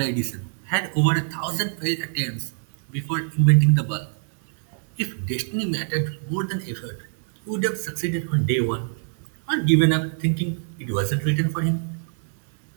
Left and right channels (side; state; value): left; silent; 62 dB below the other